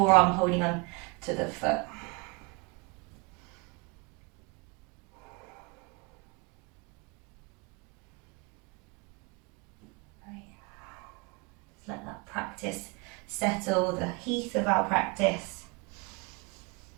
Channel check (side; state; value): left; quieter; 28.7 dB